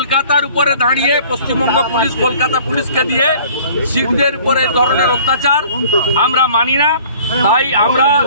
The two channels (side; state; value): both; inverted; correlation -0.51